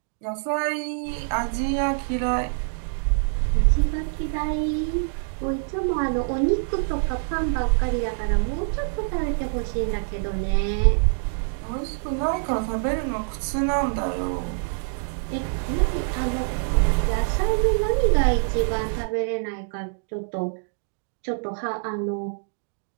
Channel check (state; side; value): silent; left; digital silence